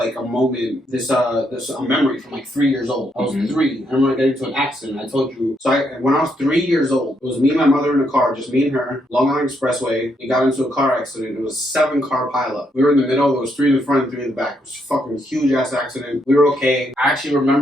a moment, this a memory from like 3 years old. I was 3. I remember getting into an accident. I told you. So when I was 3 years old, it was me and my mother in a car, just me and her, Long Island Expressway. We got into a car accident. It was a 7-car pileup. We were in the middle. There was 3 in the front and 3 in the back. It was a fucking huge ass accident. We were okay. I actually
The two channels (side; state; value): both; normal; correlation 0.76